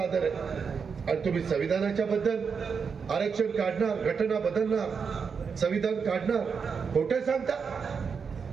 आहे आणि तुम्ही संविधानाच्या बद्दल आरक्षण काढणार, घटना बदलणार, संविधान काढणार, खोटे सांगता.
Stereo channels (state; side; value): quieter; left; 5.9 dB